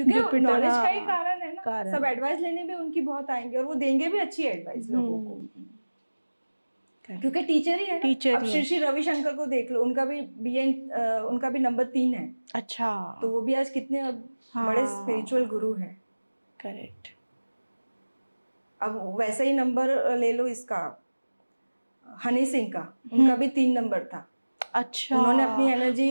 नॉलेज का ही कारण है ना, सब एडवाइस लेने भी उनकी बहुत आएंगे, और वो देंगे भी अच्छी एडवाइस लोगों को, क्योंकि टीचर ही है ना। अब श्री रविशंकर को देख लो, उनका भी नंबर 3 है। अच्छा, तो वो भी आज कितने बड़े स्पिरिचुअल गुरु हैं। करेक्ट। अब वैसा ही नंबर ले लो इसका, हनी सिंह का, उनका भी 3 नंबर था। अच्छा, उन्होंने अपनी एनर्जी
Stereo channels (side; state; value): both; inverted; correlation -1.00